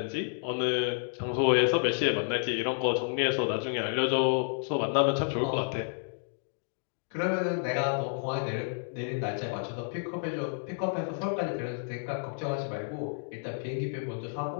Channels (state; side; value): silent; right; digital silence